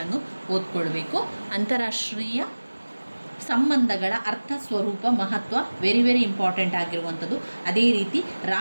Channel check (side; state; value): both; inverted; correlation -1.00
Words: ಓದ್ಕೊಳ್ಬೇಕು. ಅಂತಾರಾಷ್ಟ್ರೀಯ ಸಂಬಂಧಗಳ ಅರ್ಥ, ಸ್ವರೂಪ, ಮಹತ್ವ ವೆರಿ ಇಂಪಾರ್ಟೆಂಟ್ ಆಗಿರುವಂಥದ್ದು. ಅದೇ ರೀತಿ